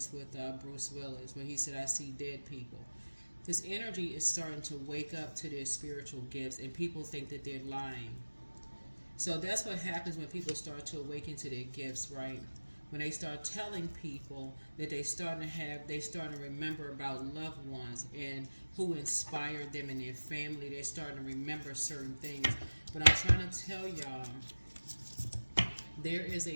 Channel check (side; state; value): both; inverted; correlation -1.00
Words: with Bruce Willis, where he said, "I see dead people." This energy is starting to wake up to their spiritual gifts, and people think that they're lying. So that's what happens when people start to awaken to their gifts, right? When they start telling people that they start to remember about loved ones and who inspired them in their family. They're starting to remember certain things. But I'm trying to tell y'all there is